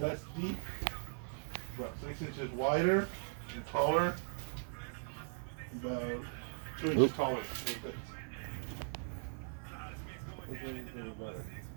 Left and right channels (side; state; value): left; silent; 52 dB below the other